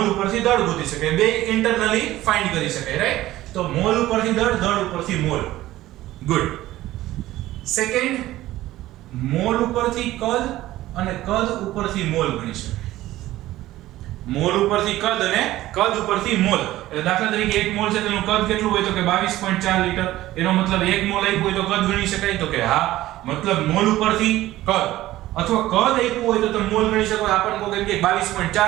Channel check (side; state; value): left; quieter; 15.6 dB